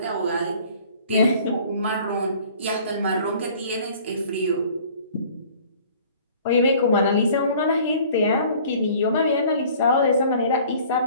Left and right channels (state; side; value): inverted; both; correlation -0.51